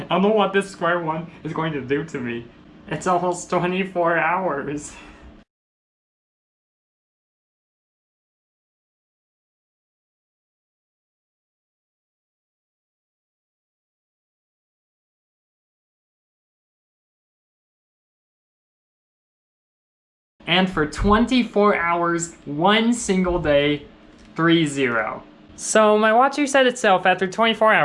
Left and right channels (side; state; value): both; identical; correlation 1.00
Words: don't know what this Square-1 is going to do to me. It's almost 24 hours. And for 24 hours, one single day, 3-0. So my watch reset itself after 24